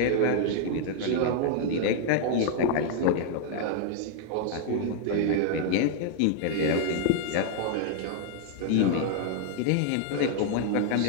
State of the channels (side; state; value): both; different; correlation 0.00